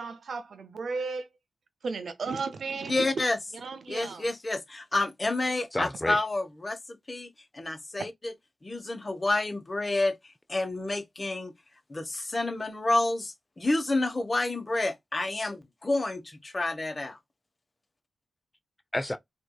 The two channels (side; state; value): both; normal; correlation 0.96